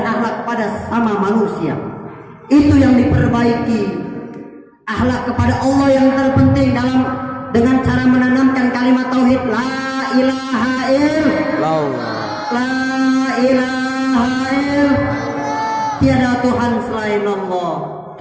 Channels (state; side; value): identical; both; correlation 1.00